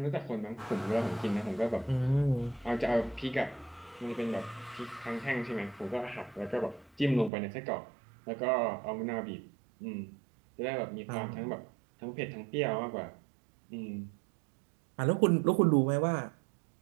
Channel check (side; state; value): left; drops out; at 7.3 s